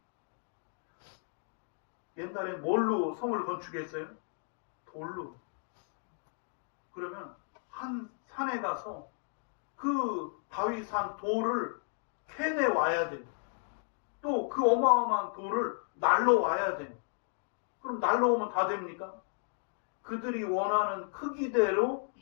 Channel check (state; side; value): silent; right; 55 dB below the other